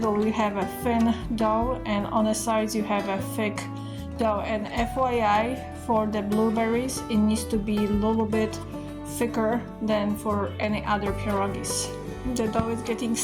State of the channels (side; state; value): both; identical; correlation 1.00